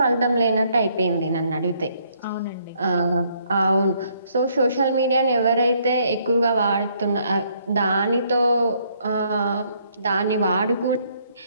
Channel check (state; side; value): inverted; both; correlation -0.68